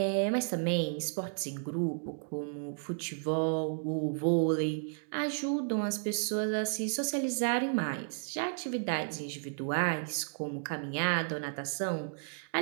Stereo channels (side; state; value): left; silent; digital silence